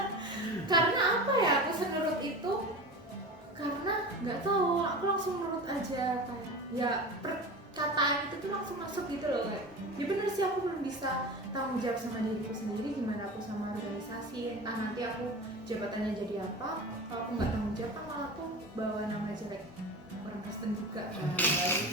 Karena apa ya aku senurut itu? Karena nggak tahu, aku langsung nurut aja kayak ya perkataan itu tuh langsung masuk gitu loh kayak. Ya bener sih aku belum bisa tanggung jawab sama diriku sendiri, gimana aku sama organisasi, entah nanti aku jabatannya jadi apa. Kalau aku nggak tanggung jawab kan malah aku bawa nama jelek orang Kristen juga kan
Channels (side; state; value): both; normal; correlation 0.31